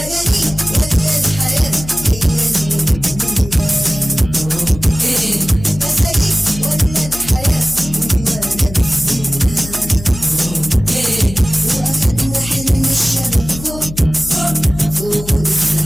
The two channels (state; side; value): noise; left; hum, 12 dB below the sound